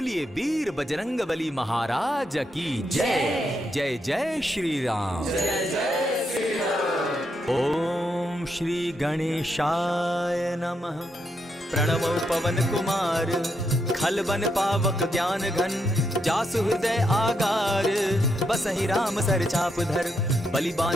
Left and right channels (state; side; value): normal; both; correlation 0.80